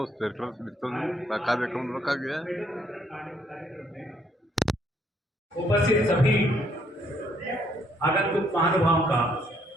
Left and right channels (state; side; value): normal; both; correlation 0.69